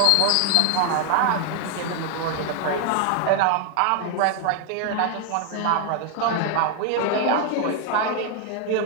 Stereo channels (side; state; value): both; different; correlation 0.01